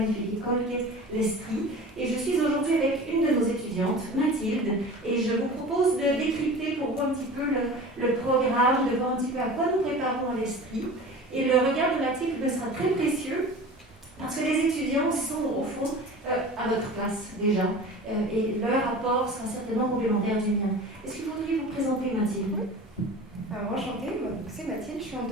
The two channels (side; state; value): both; normal; correlation 0.37